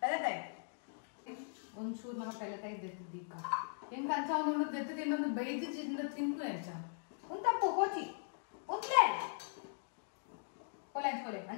ಒಂಚೂರು ನಮ್ಮ ಪೆಲತಾಯಿ ದೆತ್ತಿದ್ದೀಕ ಹೆಂಗೆ ಅಂಚ ಒಂದು ದೆತ್ತು ತಿನ್ನೊಂದು ಬೈದು ತಿಂದು ಎಂಚ ಒಂದು ತಪ್ಪು ಕೋಚಿ ಒಂದ್ಲೇ ಕೊಲೆ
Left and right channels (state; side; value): silent; right; digital silence